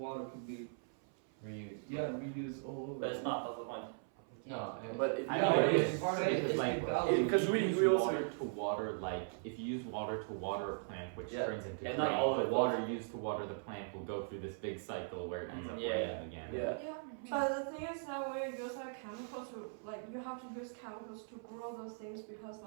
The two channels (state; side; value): silent; left; 52 dB below the other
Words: could be Reused. reused all over. But it's not. That's the point. No, But I Yeah, know but it's it's part of it is like Because if you we use also- water to water, like if you use water to water a plant, which Yeah. turns into Yeah, grain, not all of the it water goes- used to water the plant will go through this big cycle where it ends up Yeah. raining again. yeah. Yeah, but the thing is that when you use like chemicals to like you have to use chemicals to grow those things because